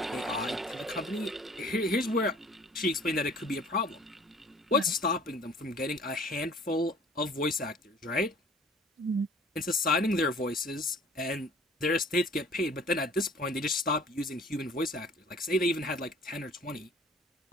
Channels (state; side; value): normal; both; correlation 0.50